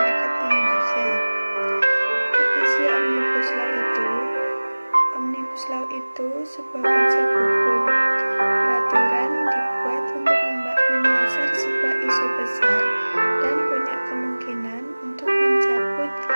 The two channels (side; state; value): both; inverted; correlation -1.00